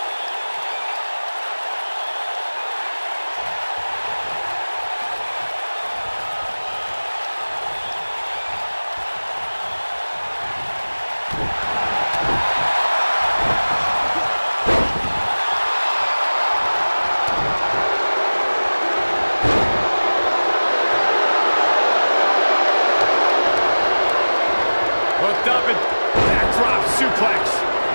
Hooked up and backdrop suplex.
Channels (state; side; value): inverted; both; correlation -1.00